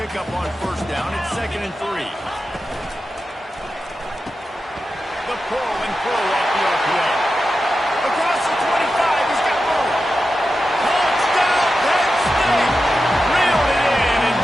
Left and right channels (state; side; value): normal; both; correlation 0.91